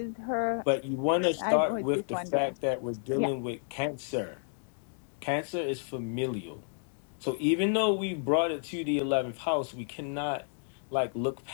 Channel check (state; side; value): silent; right; digital silence